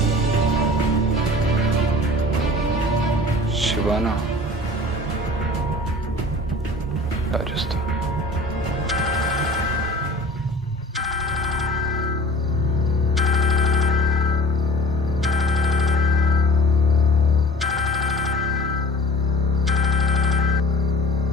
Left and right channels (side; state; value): both; normal; correlation 0.45